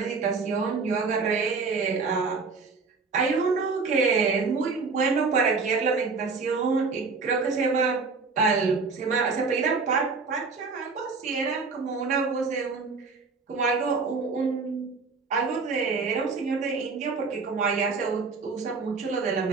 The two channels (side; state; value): left; quieter; 4.5 dB